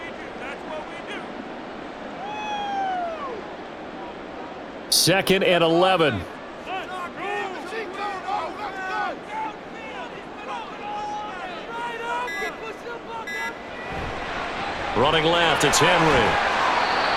Second and 11. Running left, it's Henry.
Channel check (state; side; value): identical; both; correlation 1.00